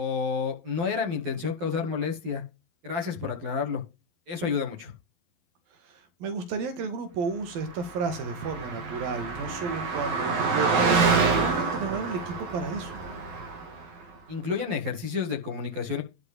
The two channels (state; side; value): late; left; 12 ms